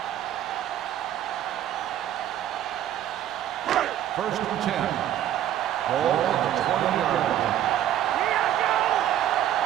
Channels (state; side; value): quieter; left; 11.6 dB